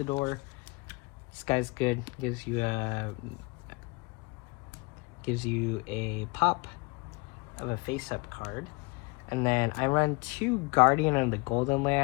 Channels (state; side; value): quieter; right; 27.5 dB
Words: This guy's good. Gives you a pop of a face-up card. And then I run 2 Guardian of the Golden